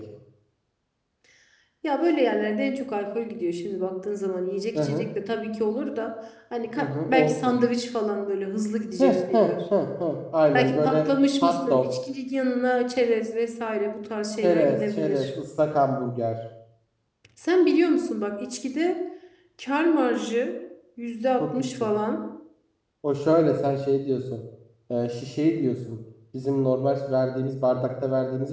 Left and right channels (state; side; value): identical; both; correlation 1.00